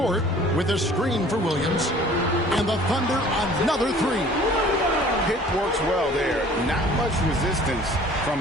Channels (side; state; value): both; normal; correlation 0.50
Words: with a screen for Williams. And the Thunder another 3. Pick works well there. Not much resistance